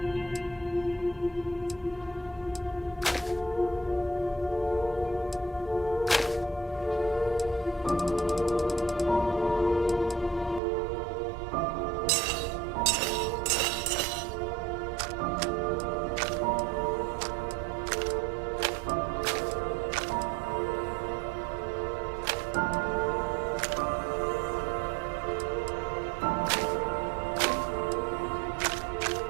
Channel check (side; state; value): left; drops out; at 10.6 s